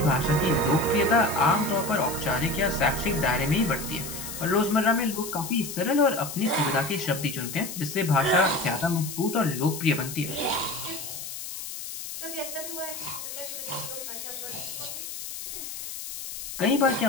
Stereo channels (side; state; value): left; noise; hiss, 8 dB below the sound